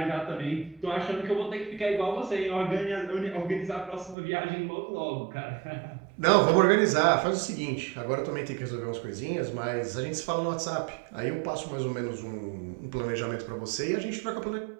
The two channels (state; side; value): drops out; left; at 4.2 s